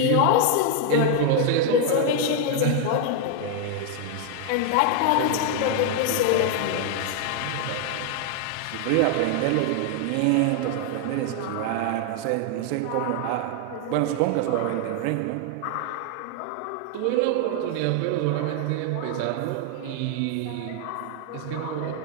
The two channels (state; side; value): different; both; correlation 0.00